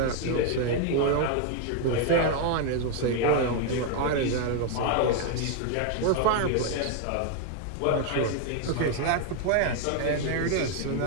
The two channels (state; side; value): different; both; correlation 0.01